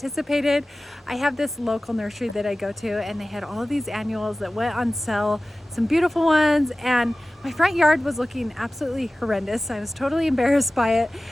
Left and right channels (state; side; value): normal; both; correlation 0.96